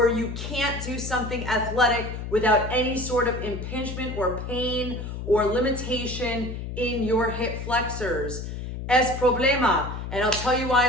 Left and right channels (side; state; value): left; noise; hum, 7 dB below the sound